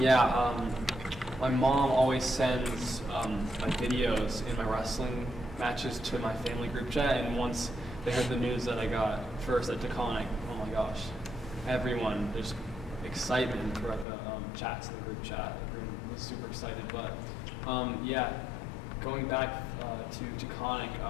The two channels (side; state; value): right; drops out; at 14.1 s